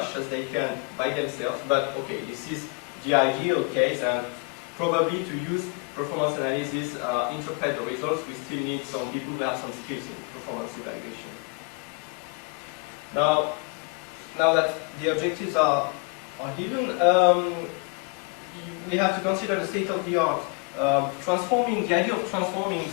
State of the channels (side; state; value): right; quieter; 31.9 dB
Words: as they can by themselves. But okay, this is the ideal case, and probably to use performance analysis, interpret the results, we still need some people who have some skills in performance evaluation. Now that the objectives are given, we have to consider the state of the art the idea of transforming